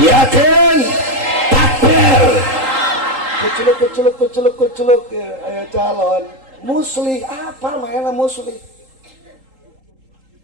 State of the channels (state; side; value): late; left; 3.8 ms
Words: Takbir. Keceluk ayo calon muslih apa mainnya muslih